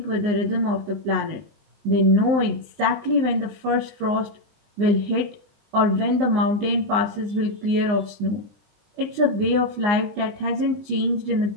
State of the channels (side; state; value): left; late; 19 ms